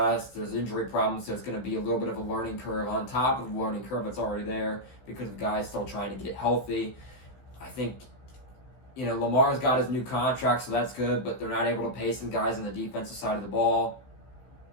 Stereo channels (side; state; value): right; late; 15 ms